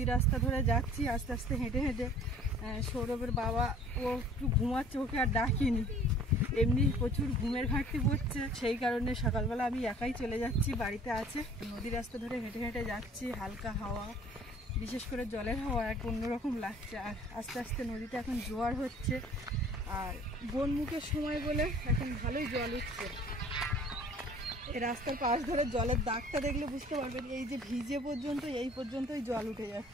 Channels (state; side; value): normal; both; correlation 0.51